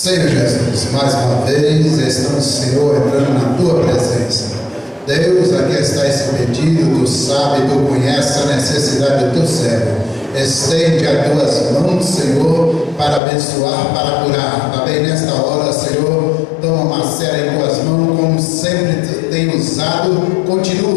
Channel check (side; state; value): right; drops out; at 13.2 s